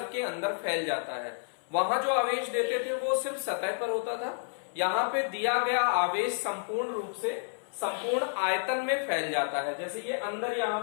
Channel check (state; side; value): silent; right; 58 dB below the other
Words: के अंदर फैल जाता है। वहां जो आवेश देते थे वो सिर्फ सतह पर होता था, यहाँ पे दिया गया आवेश संपूर्ण रूप से संपूर्ण आयतन में फैल जाता है। जैसे ये अंदर